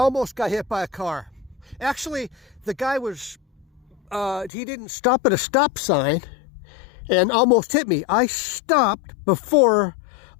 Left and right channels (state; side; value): drops out; right; at 4.5 s